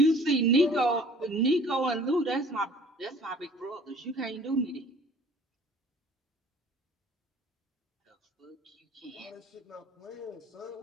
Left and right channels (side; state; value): both; normal; correlation 0.51